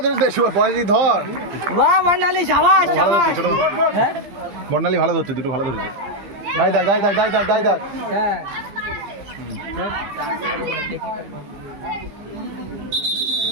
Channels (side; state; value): left; late; 14 ms